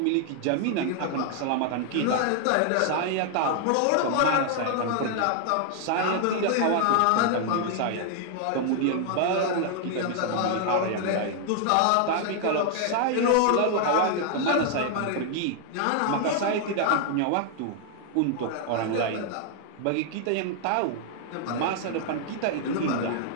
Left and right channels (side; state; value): both; different; correlation 0.00